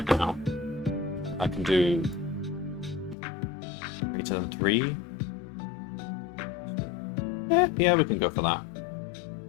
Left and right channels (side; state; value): right; drops out; at 3.2 s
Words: now. I can do greater than 3. Yeah, we can go for that.